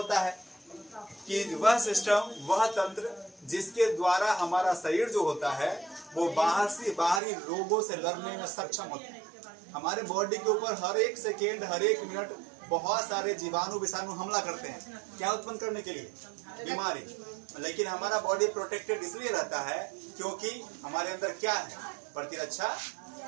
है कि वह सिस्टम, वह तंत्र जिसके द्वारा हमारा शरीर जो होता है वो बाहरी रोगों से लड़ने में सक्षम होता है। हमारे बॉडी के ऊपर हर एक सेकेंड, हर एक मिनट बहुत सारे जीवाणु विषाणु हमला करते हैं, क्या उत्पन्न करने के लिए? बीमारी। लेकिन हमारा बॉडी प्रोटेक्टेड इसलिए रहता है क्योंकि हमारे अंदर क्या है? प्रतिरक्षा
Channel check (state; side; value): drops out; left; at 7.2 s